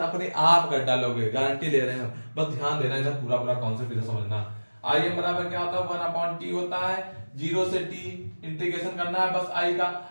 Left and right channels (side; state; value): both; inverted; correlation -1.00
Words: अपने आप कर डालोगे, गारंटी ले रहे हैं। बस ध्यान देना, इधर पूरा पूरा कॉन्सेप्ट इधर समझना। आई एम बराबर क्या होता है, 1/t होता है, जीरो से टी इंटीग्रेशन करना है बस आई का।